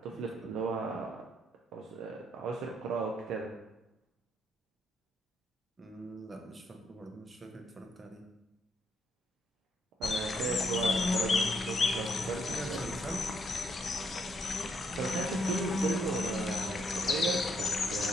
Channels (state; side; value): normal; both; correlation 0.74